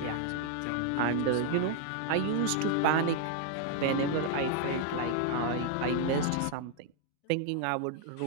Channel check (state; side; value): different; both; correlation 0.00